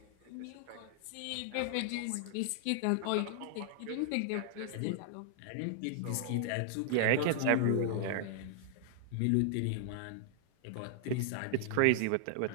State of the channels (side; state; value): both; different; correlation -0.01